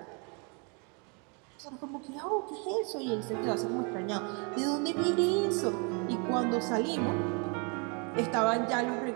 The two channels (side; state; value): left; quieter; 34.4 dB